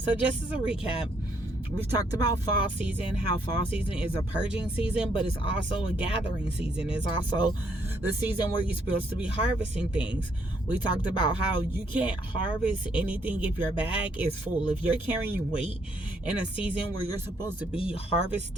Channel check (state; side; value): normal; both; correlation 0.71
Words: just as a recap, we've talked about fall season, how fall season is a purging season, but it's also a gathering season. It's also the season where you're supposed to be harvesting things. We talked about how you can't harvest anything if your bag is full. If you're carrying weight in a season where you're supposed to be